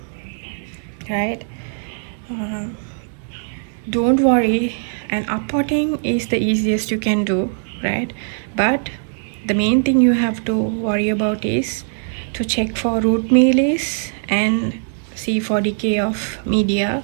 right? Um, don't worry, and uppotting is the easiest you can do, right? But the main thing you have to worry about is to check for root mealies and see for decay of media.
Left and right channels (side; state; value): left; silent; digital silence